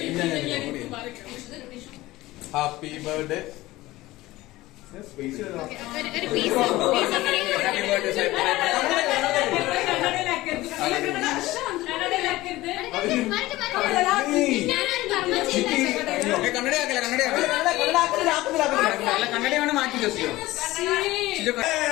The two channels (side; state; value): right; quieter; 18.1 dB